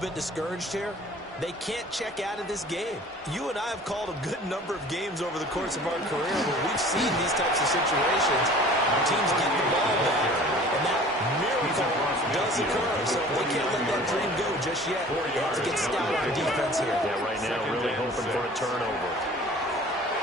bit discouraged here, they can't check out of this game. You and I have called a good number of games over the course of our career where we've seen these types of situations. Teams get the ball back, and that miracle does occur. So they can't let that dream go just yet. They have to get stout on defense here. Yeah, right now really hoping for a turnover.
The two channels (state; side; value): normal; both; correlation 0.46